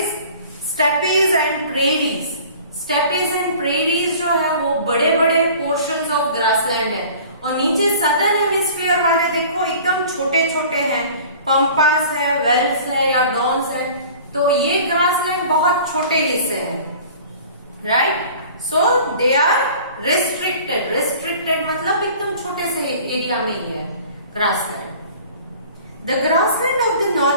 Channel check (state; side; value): inverted; both; correlation -0.46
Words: steppes and prairies. Steppes and prairies जो है वो बड़े बड़े पोर्शंस ऑफ ग्रासलैंड है, और नीचे सदर्न हेमिस्फीयर वाले देखो एकदम छोटे छोटे हैं, पंपास है, वेल्स है या डॉन्स है। तो ये ग्रासलैंड बहुत छोटे हिस्से हैं, right. So they are restricted. Restricted मतलब एकदम छोटे से एरिया में ही है grassland. The grassland of the